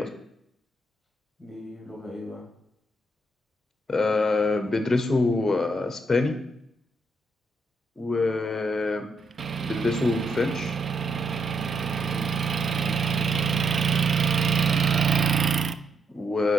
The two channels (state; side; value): normal; both; correlation 0.76